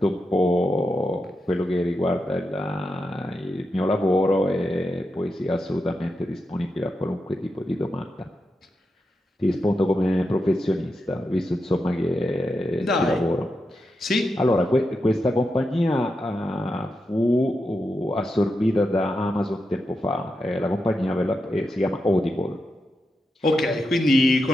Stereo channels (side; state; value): both; normal; correlation 0.87